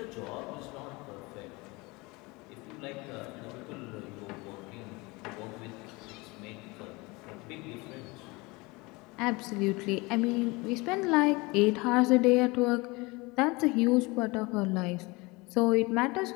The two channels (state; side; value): quieter; right; 24.6 dB